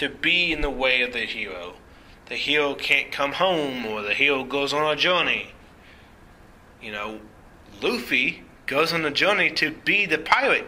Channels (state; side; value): identical; both; correlation 1.00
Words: be in the way of the hero. The hero can't come home, or the hero goes on a journey. You know, Luffy goes on a journey to be the Pirate